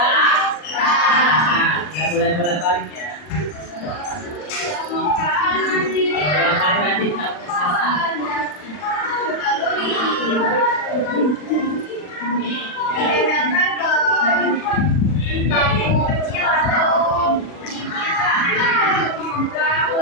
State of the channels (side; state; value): right; late; 40 ms